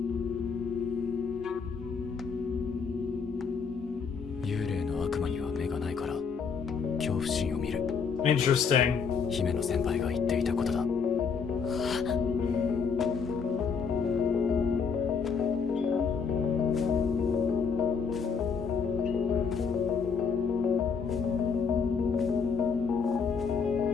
Interesting. 姫の先輩が言っていたことだ。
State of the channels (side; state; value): right; quieter; 5.8 dB